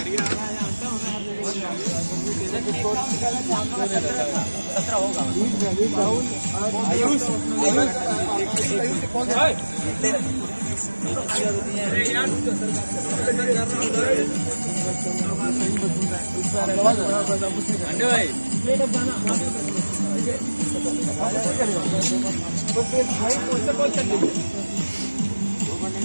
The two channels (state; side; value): inverted; both; correlation -1.00